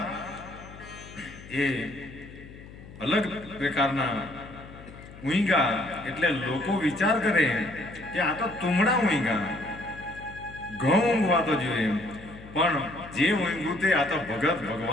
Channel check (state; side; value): noise; left; hum, 17 dB below the sound